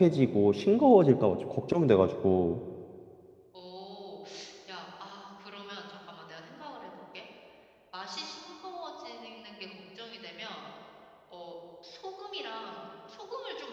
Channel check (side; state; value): both; identical; correlation 1.00